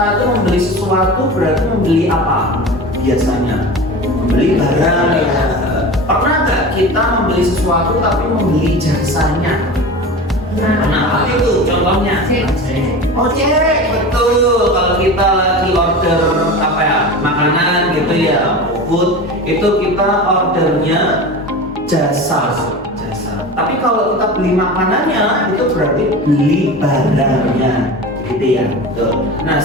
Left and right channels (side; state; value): both; normal; correlation 0.31